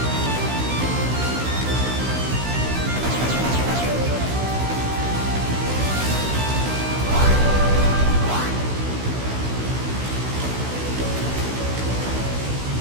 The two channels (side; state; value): left; late; 16 ms